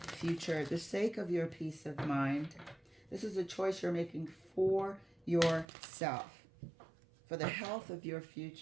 the sake of your peace of mind. This is a choice you're making for yourself, for the health of your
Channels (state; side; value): drops out; left; at 5.7 s